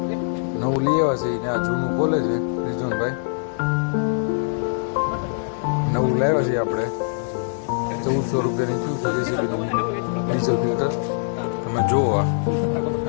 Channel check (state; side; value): silent; right; digital silence